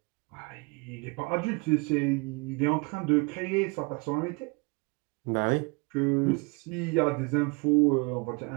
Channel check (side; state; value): left; quieter; 29.3 dB